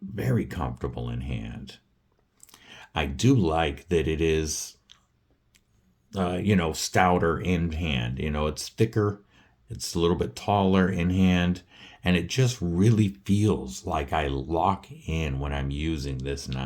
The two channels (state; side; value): identical; both; correlation 1.00